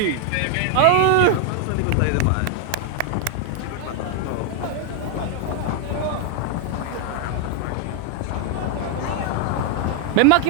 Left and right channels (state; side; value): different; both; correlation 0.01